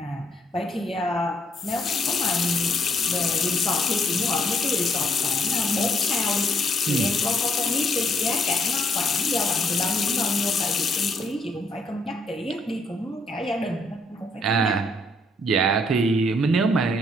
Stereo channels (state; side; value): normal; both; correlation 0.71